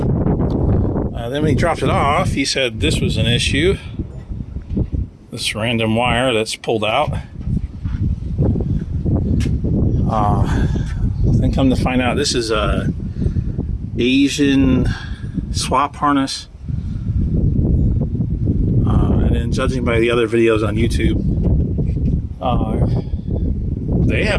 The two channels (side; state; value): both; identical; correlation 1.00